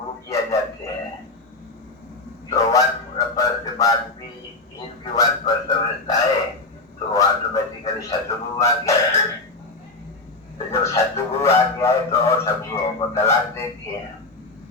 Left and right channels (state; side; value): quieter; right; 3.2 dB